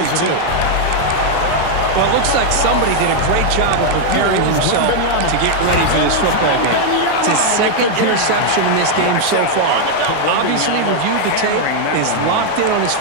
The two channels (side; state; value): both; different; correlation 0.00